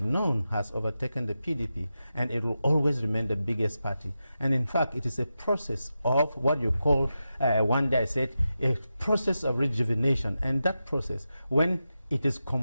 None has overtaken the PDP, and it will always remain the biggest party. And in fact, it is a process of what you call, one day I said, a process of rejuvenation. And that process, when it is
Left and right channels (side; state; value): both; inverted; correlation -0.90